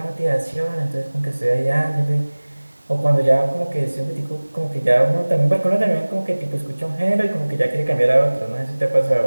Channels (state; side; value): inverted; both; correlation -1.00